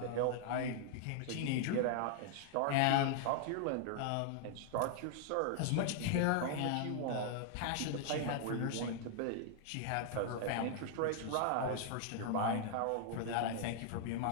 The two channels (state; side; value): different; both; correlation -0.01